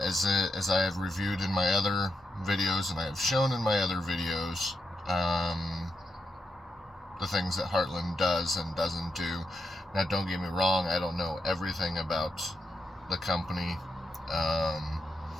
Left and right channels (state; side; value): normal; both; correlation 0.84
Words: I have reviewed in my other videos and I have shown in my other videos, the things that Heartland does and doesn't do. Now, don't get me wrong, I don't know everything about the company. Um,